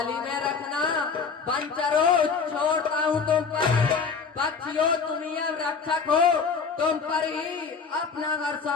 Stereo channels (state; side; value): quieter; right; 5.4 dB